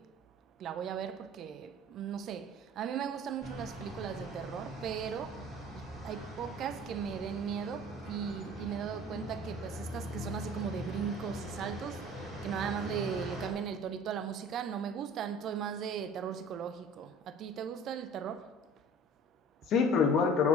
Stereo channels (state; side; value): normal; both; correlation 0.45